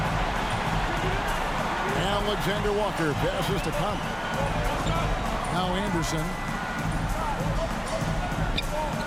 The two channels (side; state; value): both; identical; correlation 1.00